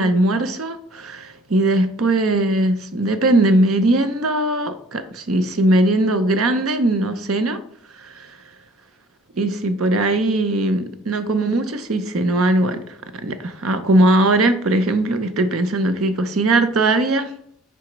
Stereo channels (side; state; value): both; normal; correlation 0.55